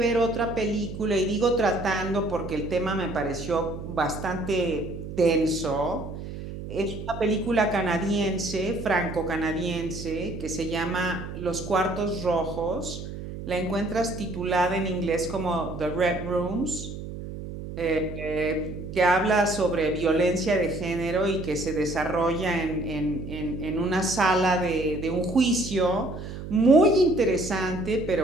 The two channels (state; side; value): noise; right; hum, 9 dB below the sound